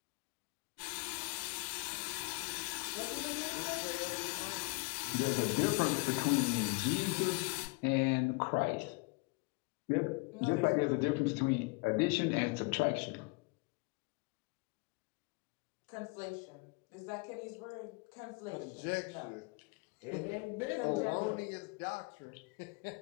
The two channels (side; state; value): right; quieter; 28.6 dB